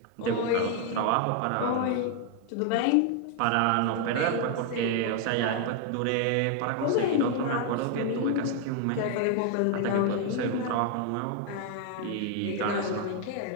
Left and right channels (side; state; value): both; different; correlation 0.00